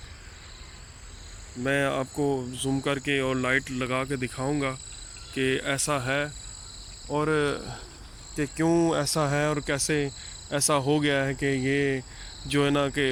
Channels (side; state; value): both; identical; correlation 1.00